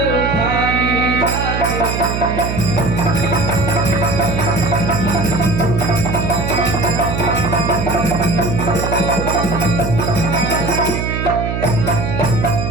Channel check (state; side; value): noise; right; hum, 3 dB below the sound